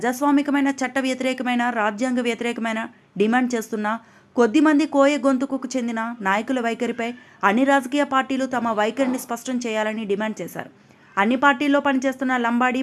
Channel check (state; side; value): identical; both; correlation 1.00